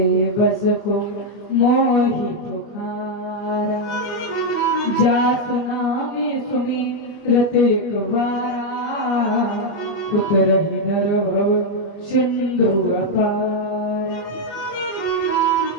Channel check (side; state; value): right; late; 24 ms